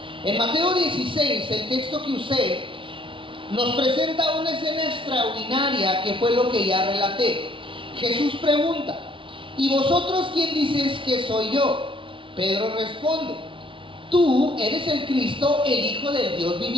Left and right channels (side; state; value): left; late; 0.25 ms